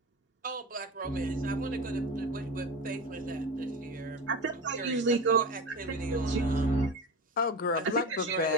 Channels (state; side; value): normal; both; correlation 0.26